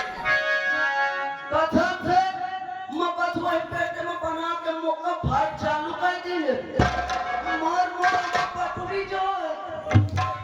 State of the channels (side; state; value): both; identical; correlation 1.00